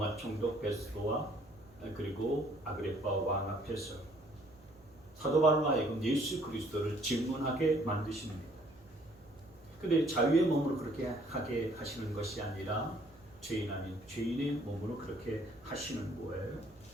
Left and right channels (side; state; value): right; noise; hum, 25 dB below the sound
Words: 총독 베스도와 그리고 아그리파 왕 앞에서 사도 바울로 하여금 예수 그리스도를 질문하게 만드십니다. 그런데 자유의 몸으로 그렇게 하게 하시는 것이 아니라 죄인 아닌 죄인의 몸으로 그렇게 하시는 거예요.